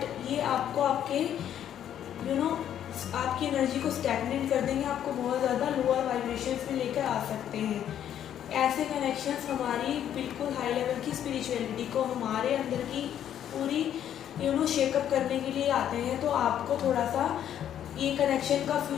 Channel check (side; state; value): right; quieter; 10.2 dB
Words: ये आपको आपके आपकी एनर्जी को स्टैग्नेट कर देंगे, आपको बहुत ज़्यादा लोअर वाइब्रेशंस में लेकर आ सकते हैं। ऐसे कनेक्शंस हमारी बिल्कुल हाई लेवल की स्पिरिचुअलिटी को, हमारे अंदर की पूरी शेकअप करने के लिए आते हैं। तो आपको थोड़ा सा ये कनेक्शन का